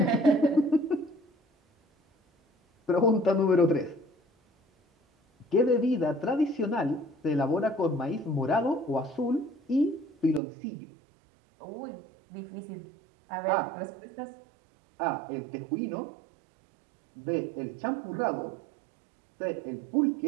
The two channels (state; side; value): drops out; left; at 10.4 s